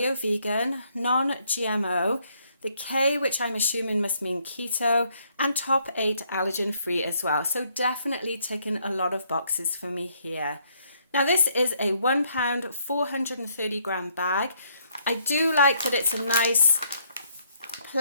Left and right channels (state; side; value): inverted; both; correlation -0.70